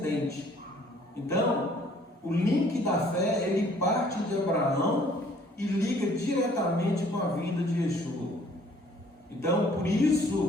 Então, o link da fé, ele parte de Abraão e liga diretamente com a vinda de Yeshua. Então, por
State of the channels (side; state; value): both; normal; correlation 0.58